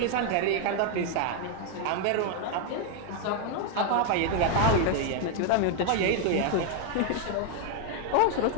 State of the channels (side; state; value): both; different; correlation 0.01